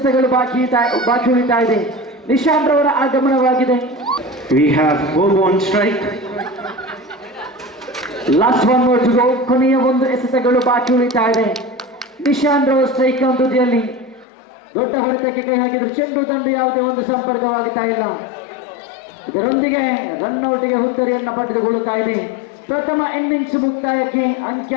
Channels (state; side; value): drops out; right; at 14.2 s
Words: ಬಾಕಿ ಉಳಿತಾ ಇದೆ. ನಿಶಾಂತ್ ರವರ ಆಗಮನವಾಗಿದೆ. we have Bobo on strike. Last 1 more to go. ಕೊನೆಯ 1 ಎಸೆತಗಳು ಬಾಕಿ ಉಳಿತಾ ಇದೆ. ನಿಶಾಂತ್ ರವರ ಸ್ಟ್ರೈಕ್ ತುದಿಯಲ್ಲಿ ದೊಡ್ಡ ಹೊಡೆತಕ್ಕೆ ಕೈ ಹಾಕಿದ್ರು. ಚೆಂಡು ದಂಡು ಯಾವುದೇ ಒಂದು ಸಂಪರ್ಕವಾಗುತ್ತಾ ಇಲ್ಲ. ಇದರೊಂದಿಗೆ ರನ್ಔಟ್ಗೆ ಹುತ್ತರಿಯನ್ನು ಪಡೆದುಕೊಳ್ಳುತ್ತಾ ಇದೆ. ಪ್ರಥಮ ಇನ್ನಿಂಗ್ಸ್ ಮುಕ್ತಾಯಕ್ಕೆ